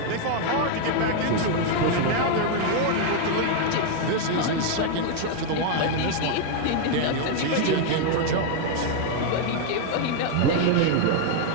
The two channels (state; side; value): different; both; correlation 0.00